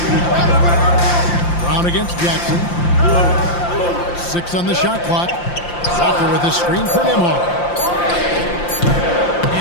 Brown against Jackson. 6 on the shot clock. Walker with a screen for Nembhard.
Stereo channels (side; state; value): right; late; 5.8 ms